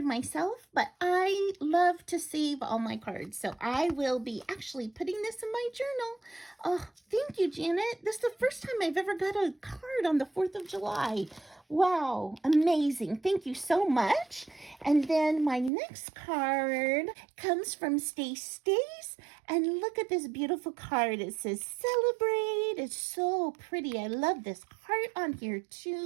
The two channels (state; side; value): drops out; left; at 15.7 s